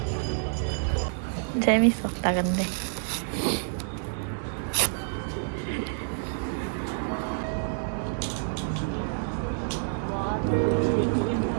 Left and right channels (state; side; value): silent; left; digital silence